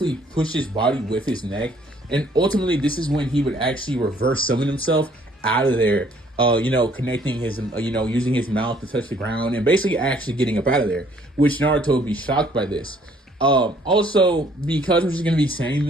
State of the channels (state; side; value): normal; both; correlation 0.62